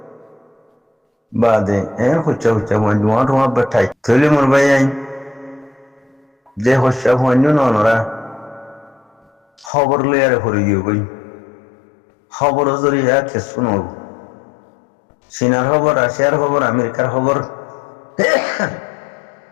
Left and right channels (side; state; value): right; drops out; at 9.7 s